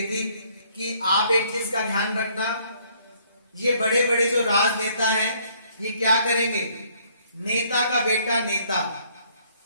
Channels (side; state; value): both; inverted; correlation -0.63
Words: थी कि आप एक चीज का ध्यान रखना, ये बड़े बड़े जो राजनेता हैं ये क्या करेंगे, नेता का बेटा नेता,